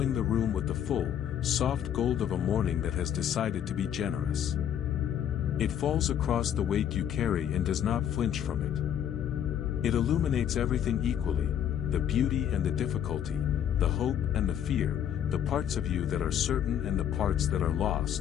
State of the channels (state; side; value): quieter; right; 9.7 dB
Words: the room with the full, soft gold of a morning that has decided to be generous. It falls across the weight you carry and does not flinch from it. It illuminates everything equally, the beauty and the difficulty, the hope and the fear, the parts of you that are certain and the parts that are